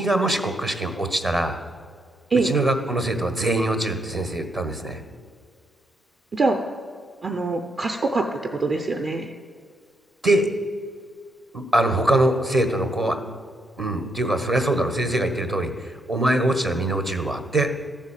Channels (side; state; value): both; normal; correlation 0.77